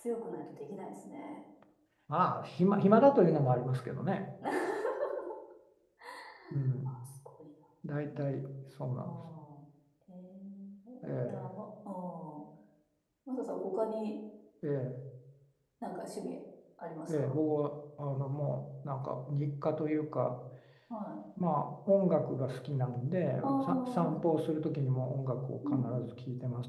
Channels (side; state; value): both; identical; correlation 1.00